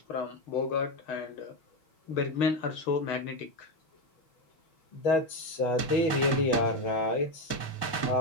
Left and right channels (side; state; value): right; late; 6.2 ms